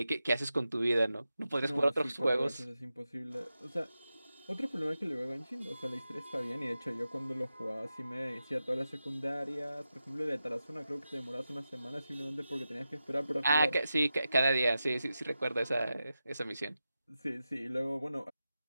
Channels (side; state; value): both; inverted; correlation -0.91